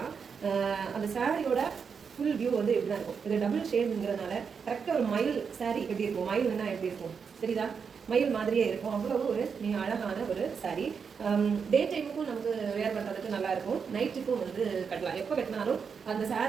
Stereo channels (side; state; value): left; quieter; 6.1 dB